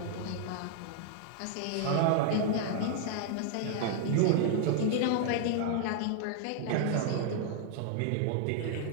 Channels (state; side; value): different; both; correlation 0.00